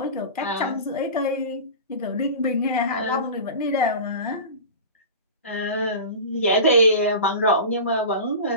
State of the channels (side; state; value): both; inverted; correlation -0.32